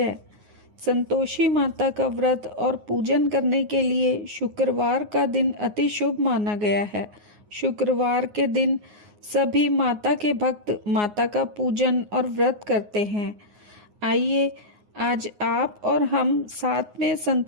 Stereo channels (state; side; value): late; left; 9.6 ms